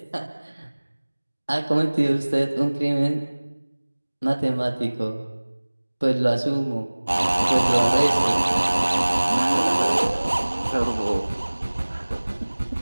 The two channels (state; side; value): inverted; both; correlation -1.00